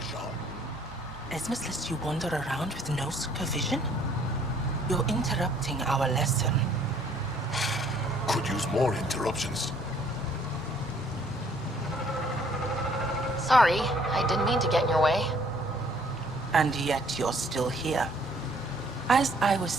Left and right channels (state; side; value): normal; both; correlation 0.61